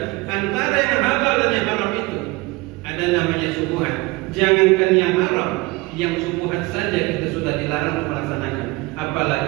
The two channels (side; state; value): left; quieter; 22.8 dB